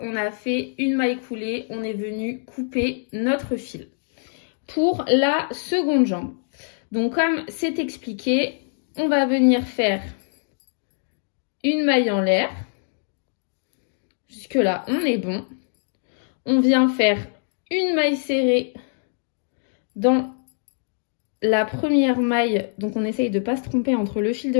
on a fait une maille coulée, on est venu couper notre fil. Pour la seconde jambe, donc comme c'est expliqué, on va venir faire une maille en l'air. Jusque là, on est bon. On vient faire une maille serrée dans la première maille. Donc on essaye de ne pas se tromper entre le fil de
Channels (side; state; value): right; silent; digital silence